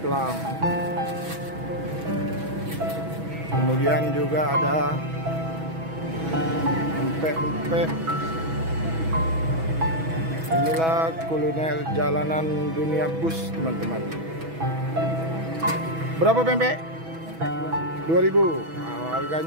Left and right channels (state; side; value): late; left; 6.1 ms